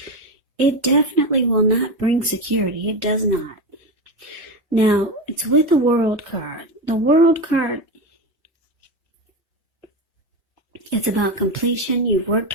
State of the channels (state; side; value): normal; both; correlation 0.18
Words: it definitely will not bring security. It does not. Now, it's with the World card. The World card, it's about completion. You've worked